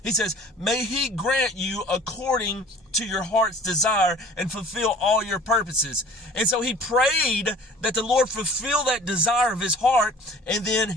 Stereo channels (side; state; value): both; normal; correlation 0.48